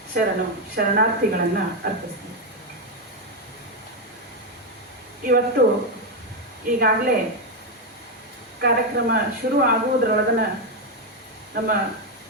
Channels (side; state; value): both; normal; correlation 0.05